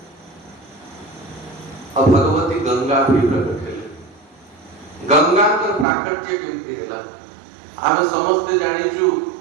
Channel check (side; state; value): left; drops out; at 5.9 s